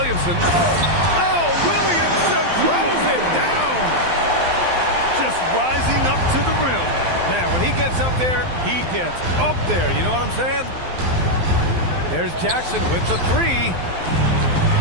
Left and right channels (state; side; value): late; left; 12 ms